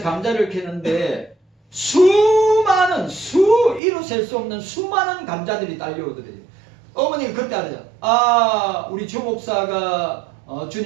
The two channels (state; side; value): drops out; left; at 3.8 s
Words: 감자를 캐는데 이루 셀 수 없는 수많은 감자들이 딸려오더래요. 어머니가 그때 알았죠. 아, 우리 주 목사가